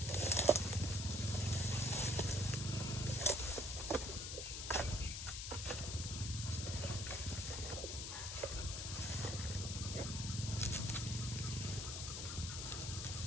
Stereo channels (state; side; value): noise; left; hiss, 4 dB below the sound